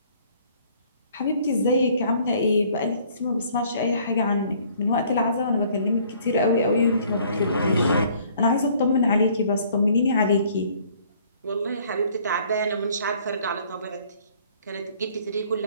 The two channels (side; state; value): both; inverted; correlation -0.59